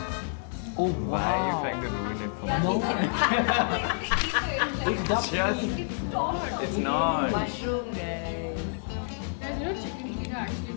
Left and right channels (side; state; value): right; silent; digital silence